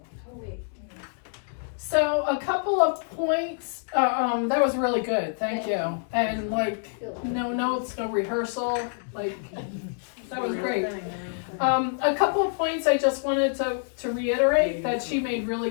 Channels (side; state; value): right; silent; digital silence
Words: So a couple of points, that was really good, thank you. And like, no notes, no rehearsal, like, that was great. A couple of points I just wanted to reiterate that she made really